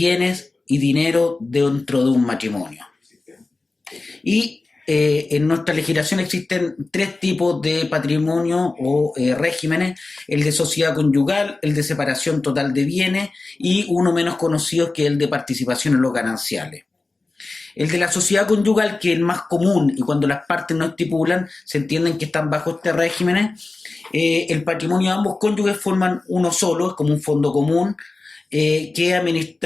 y dinero dentro de un matrimonio. Y en nuestra legislación existen tres tipos de patrimonio o regímenes: el de sociedad conyugal, el de separación total de bienes y uno menos conocido que es el de participación en los gananciales. El de la sociedad conyugal, que es el más común y cuando las partes no estipulan, se entienden que están bajo este régimen. El patrimonio de ambos cónyuges forman uno solo, es como un fondo común, que es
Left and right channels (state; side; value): quieter; right; 3.4 dB